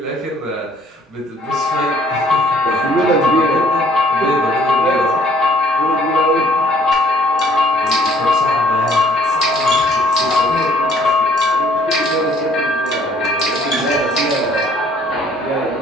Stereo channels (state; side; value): normal; both; correlation 0.59